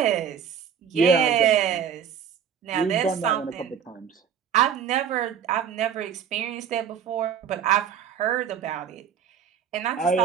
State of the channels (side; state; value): left; quieter; 7.9 dB